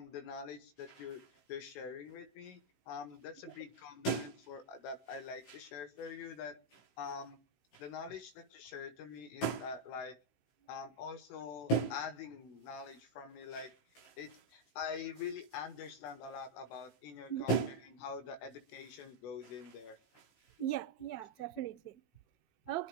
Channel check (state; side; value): late; right; 15 ms